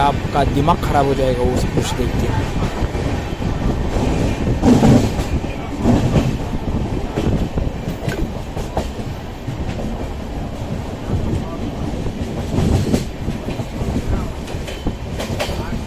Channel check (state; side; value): identical; both; correlation 1.00